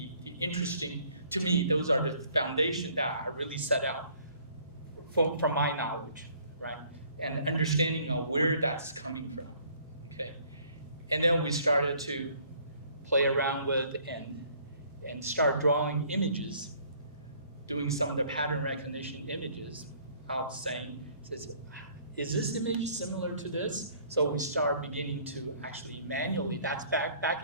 the interesting, to me, those are the foundation that I really set out from my knowledge, right? And understanding of where that's coming from, okay? And then we started to play around with and start drawing images, doing some of the pattern recognition images of saying, is this image similar to this? So we start beginning to actually manually, that's back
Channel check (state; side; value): inverted; both; correlation -0.59